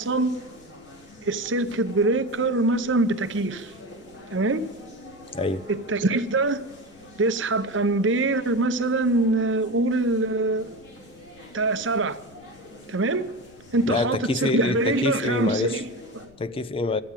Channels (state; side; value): noise; left; rumble, 27 dB below the sound